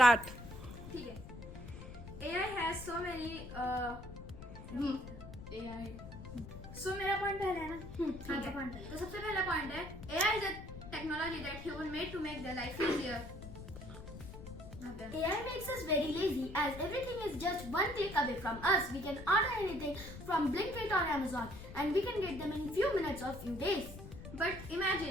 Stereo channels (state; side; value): noise; left; rumble, 12 dB below the sound